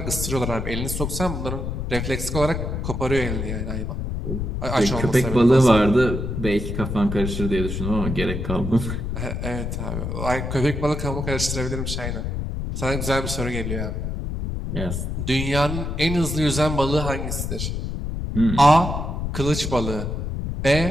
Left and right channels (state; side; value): noise; left; rumble, 3 dB below the sound